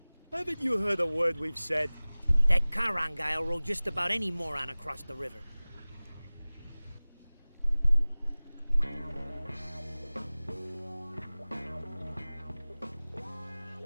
Haven't you heard a word we've said? That Charon guy'll roll just about any moron across the river.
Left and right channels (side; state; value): both; inverted; correlation -1.00